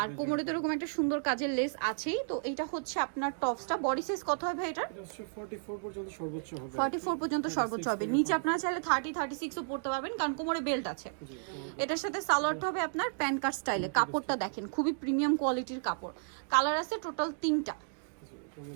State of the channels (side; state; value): left; silent; digital silence